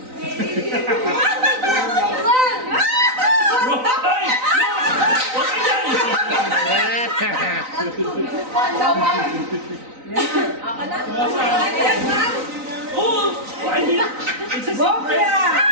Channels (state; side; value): late; left; 3.9 ms